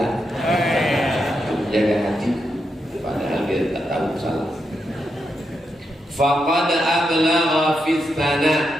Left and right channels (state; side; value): normal; both; correlation 0.84